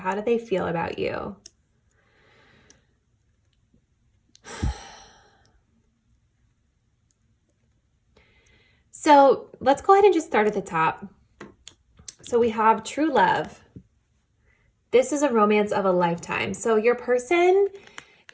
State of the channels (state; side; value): identical; both; correlation 1.00